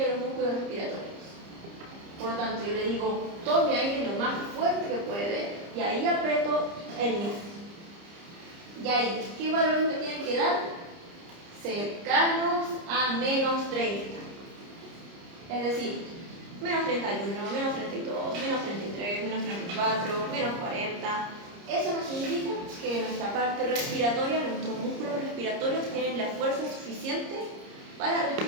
los músculos respiratorios. Por lo tanto, yo le digo tome aire lo más fuerte que puede y ahí aprieto el NIF. Y ahí, ¿qué valores me tienen que dar? Cercanos a menos 30. Es decir, menos 31, menos 32, menos 33, menos 34, menos 40. Eso nos indica que nuestra parte respiratoria, nuestros músculos respiratorios tienen la fuerza suficiente para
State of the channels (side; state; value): left; late; 30 ms